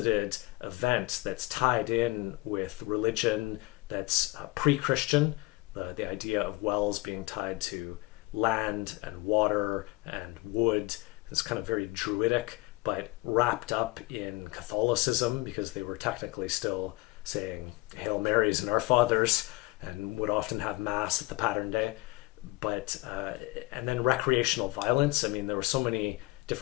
event that's tied in with religion, that's pre-Christian, the idea of wells being tied to land and water and wood, is kind of very druidic, but wrapped up in Catholicism, because they were technically still saying Hail Marys and Our Fathers, and would often have mass at the pattern day. But and then recreational violence. I mean, there were so many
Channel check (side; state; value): right; quieter; 22.1 dB